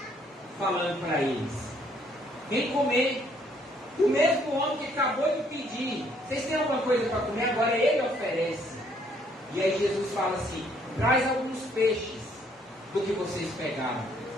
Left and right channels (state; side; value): normal; both; correlation 0.66